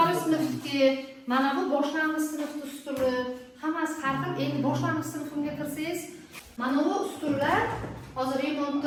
sinfga, mana bu boshlang'ich sinfning ustuni, hammasi har xil. Endi boshlang'ich sinfimga kirsangiz, mana bu ustunlar hozir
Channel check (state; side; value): identical; both; correlation 1.00